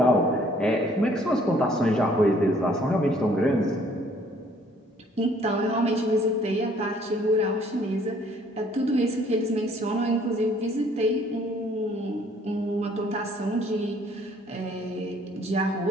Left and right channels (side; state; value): both; normal; correlation 0.60